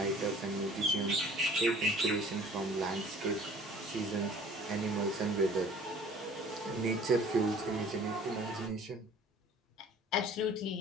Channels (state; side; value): normal; both; correlation 0.50